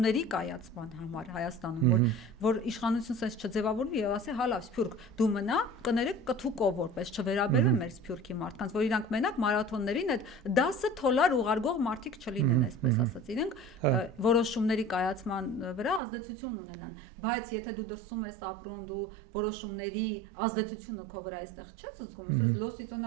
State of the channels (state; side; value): drops out; left; at 16.0 s